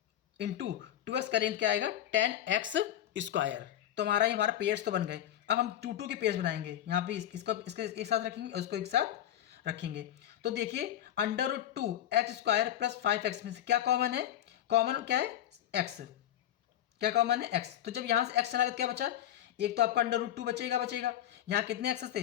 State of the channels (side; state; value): right; quieter; 11.7 dB